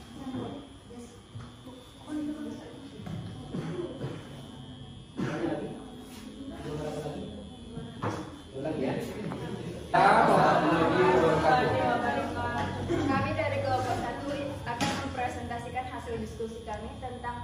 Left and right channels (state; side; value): identical; both; correlation 1.00